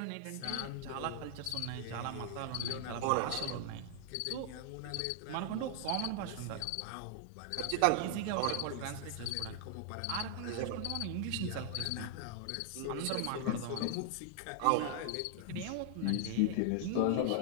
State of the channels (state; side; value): different; both; correlation 0.00